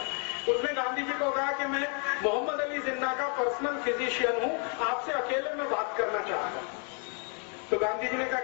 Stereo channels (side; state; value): right; quieter; 38.7 dB